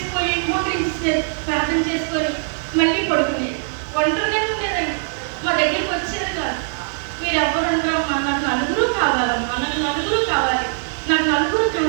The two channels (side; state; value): left; silent; digital silence